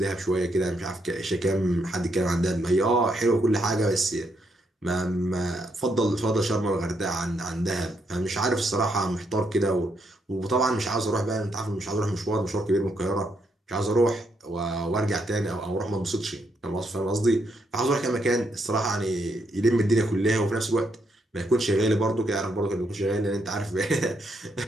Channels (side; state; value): both; normal; correlation 0.77